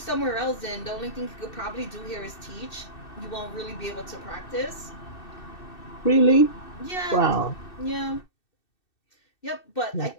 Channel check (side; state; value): right; late; 2.6 ms